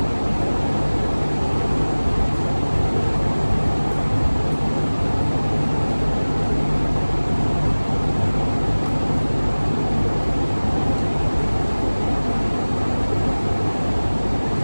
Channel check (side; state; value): both; inverted; correlation -1.00